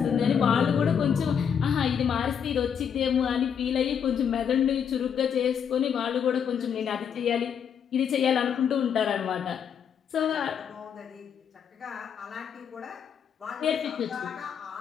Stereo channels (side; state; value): right; quieter; 7.7 dB